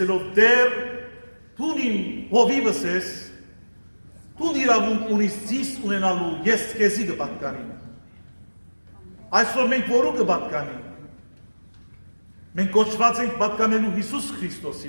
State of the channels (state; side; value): inverted; both; correlation -1.00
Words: Տեր, դու իմ հովիվս ես, դու իրավունք ունիս զիս ունենալու, ես քեզի կպատկանեմ։ Այսօր մենք որու կպատկանենք։ Մենք կոչված ենք պատկանելու Հիսուս